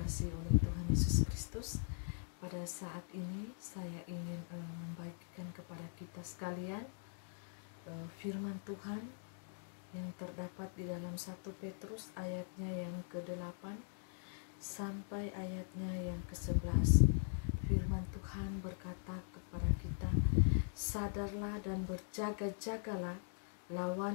oleh Tuhan Yesus Kristus. Pada saat ini saya ingin membagikan kepada kita sekalian firman Tuhan yang terdapat di dalam 1 Petrus ayatnya yang ke-8 sampai ayatnya yang ke-11. Firman Tuhan berkata kepada kita, sadarlah dan berjaga-jagalah,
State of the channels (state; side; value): silent; right; digital silence